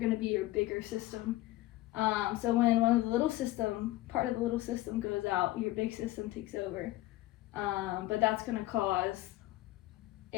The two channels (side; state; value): right; quieter; 16.9 dB